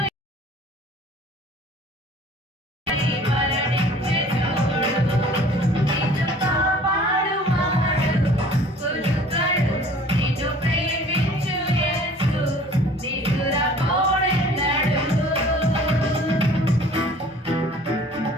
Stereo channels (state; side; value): normal; both; correlation 0.50